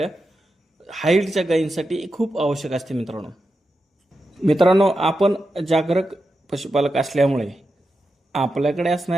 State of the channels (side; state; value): both; normal; correlation 0.89